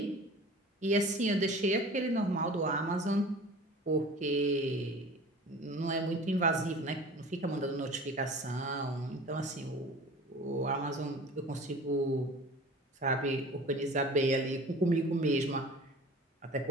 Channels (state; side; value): normal; both; correlation 0.42